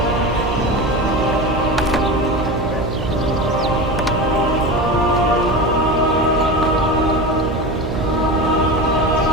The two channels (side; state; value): right; noise; hum, 5 dB below the sound